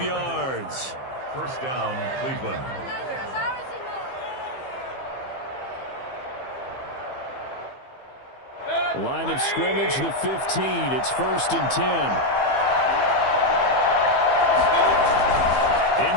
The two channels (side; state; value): right; late; 15 ms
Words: yards. First down, Cleveland. Line of scrimmage, the 15. It's 1st and 10.